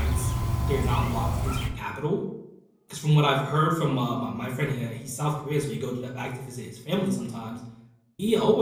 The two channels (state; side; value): identical; both; correlation 1.00